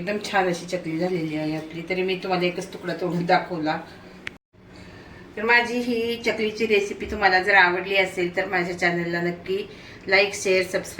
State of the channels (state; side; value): identical; both; correlation 1.00